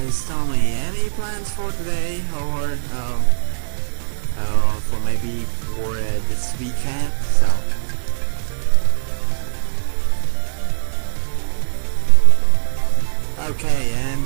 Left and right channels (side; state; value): left; silent; digital silence